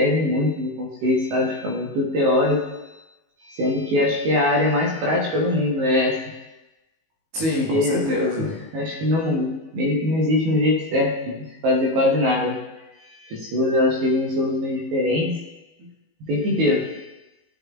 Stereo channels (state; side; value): late; left; 19 ms